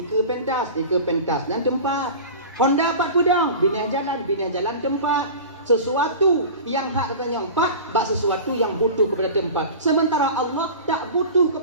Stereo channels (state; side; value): inverted; both; correlation -0.34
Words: pentas dan tempat. Honda 4 pudong, binah jalan tempat. Sesuatu yang hak katanya empat, bak sesuatu yang butuh kepada tempat. Sementara Allah tak butuh